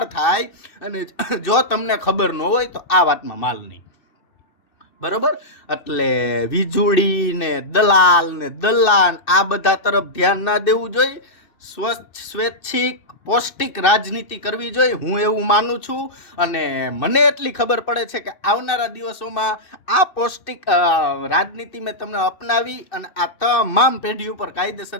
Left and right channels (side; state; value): right; late; 2.6 ms